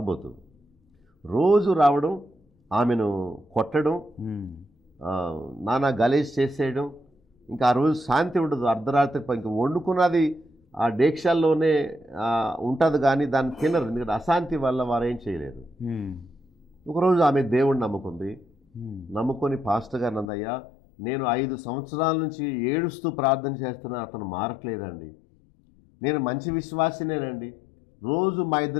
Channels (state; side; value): drops out; right; at 20.2 s